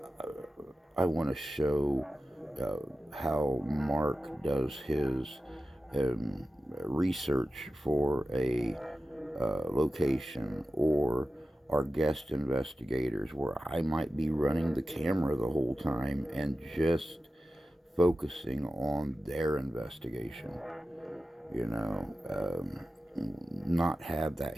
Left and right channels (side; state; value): both; normal; correlation 0.93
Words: I want to show how Mark does his research for a location, or our guest investigators, where I might be running the camera the whole time and just focusing on their investigation. You know, not have that